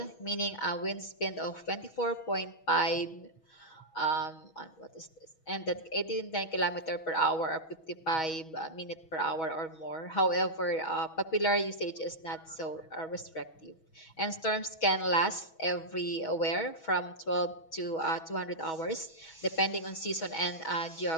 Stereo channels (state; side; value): late; right; 6.2 ms